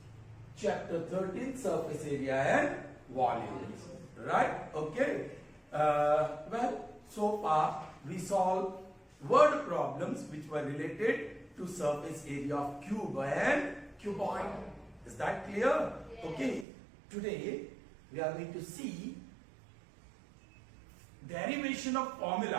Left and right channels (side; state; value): left; drops out; at 16.7 s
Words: chapter 13, surface area and volumes. Right? Okay. Well, so far we solved word problems which were related to surface area of cube and cuboid. Is that clear? Yes. Okay. Today we are going to see derivation of